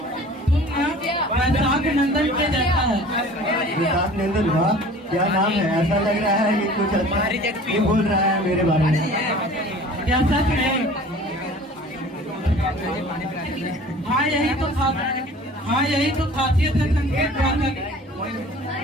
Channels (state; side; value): normal; both; correlation 0.45